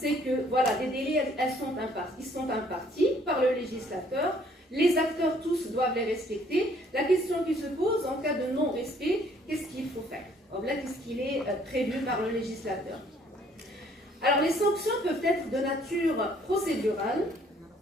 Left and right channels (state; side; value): normal; both; correlation 0.62